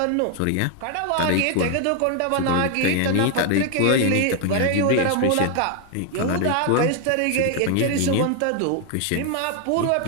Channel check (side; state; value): both; different; correlation 0.01